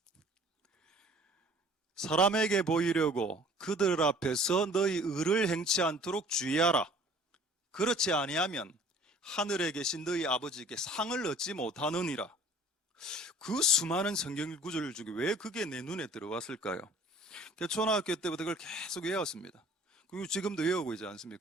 사람에게 보이려고 그들 앞에서 너희 의를 행치 않도록 주의하라. 그렇지 아니하면 하늘에 계신 너희 아버지께 상을 얻지 못하느니라. 그 수많은 성경 구절 중에 왜 그게 내 눈에 들어왔을까요? 초등학교 때부터 그걸 계속 외웠습니다. 그리고 지금도 외우고 있지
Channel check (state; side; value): normal; both; correlation 0.51